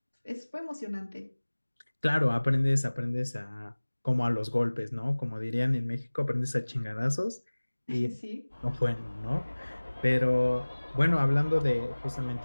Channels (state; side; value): inverted; both; correlation -1.00